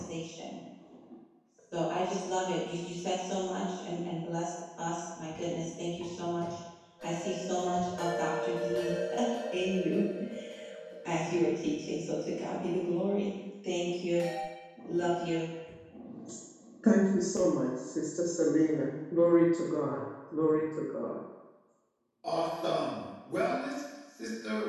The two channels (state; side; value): identical; both; correlation 1.00